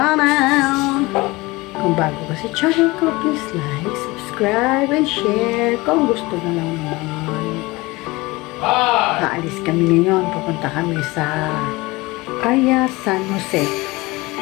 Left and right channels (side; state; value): right; quieter; 22.1 dB